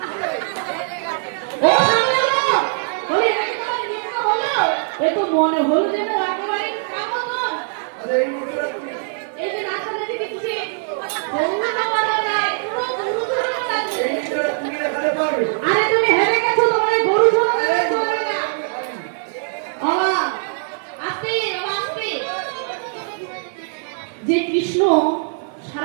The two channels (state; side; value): silent; left; 58 dB below the other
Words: ও বলি একবার নিতে হলো এ তো মনে হলো যেন একেবারে কামতন এই যে নাচটা দেখেছি বন্ধুরা বলা যায় পুরো গরু ধরে লাগছে আরে তুমি হেরে গেছো তোমার গরু ধরে চলবে না বাবা আস্তে যে কৃষ্ণ